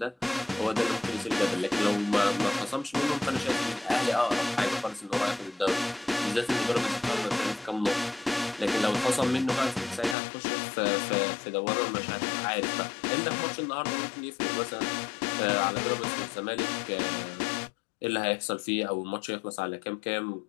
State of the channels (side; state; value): right; drops out; at 10.2 s